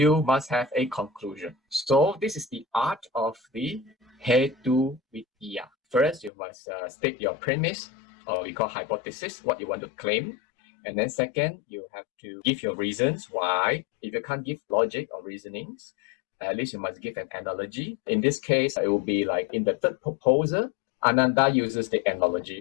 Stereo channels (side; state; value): right; drops out; at 6.3 s